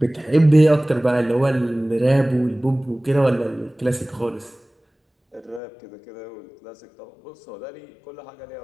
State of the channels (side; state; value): right; drops out; at 5.6 s